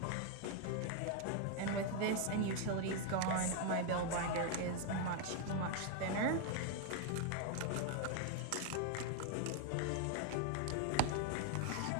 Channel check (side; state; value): both; different; correlation 0.00